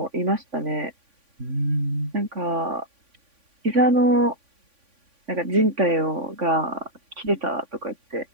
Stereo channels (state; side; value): late; left; 3.5 ms